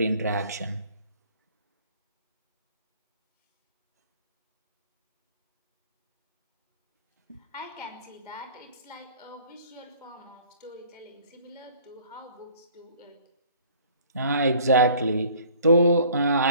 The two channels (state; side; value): inverted; both; correlation -0.52